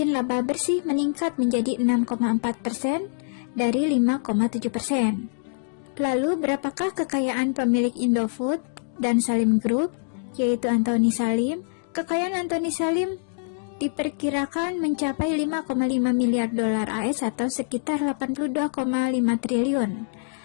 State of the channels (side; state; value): right; silent; digital silence